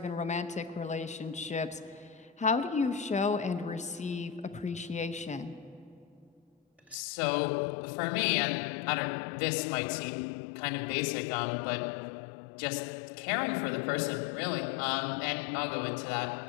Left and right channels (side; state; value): right; drops out; at 7.0 s